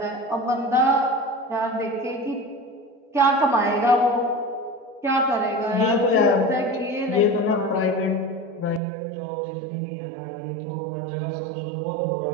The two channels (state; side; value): drops out; left; at 8.8 s